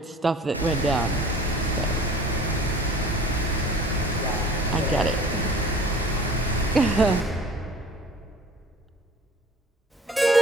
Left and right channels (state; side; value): normal; both; correlation 0.46